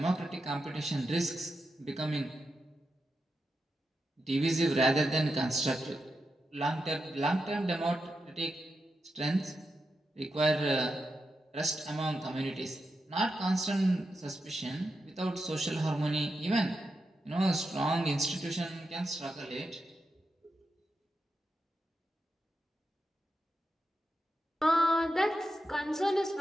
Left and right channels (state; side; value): normal; both; correlation 0.87